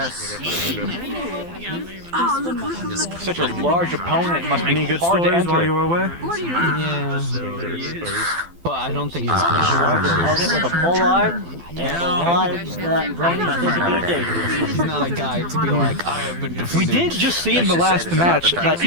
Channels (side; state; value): left; late; 12 ms